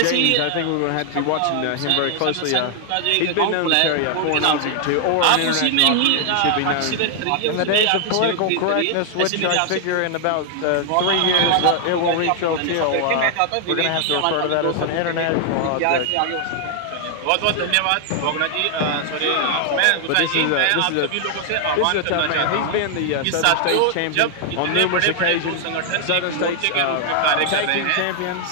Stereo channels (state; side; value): different; both; correlation 0.00